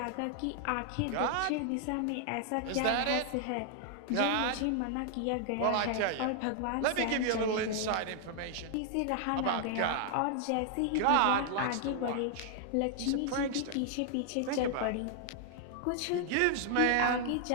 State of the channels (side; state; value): both; different; correlation 0.00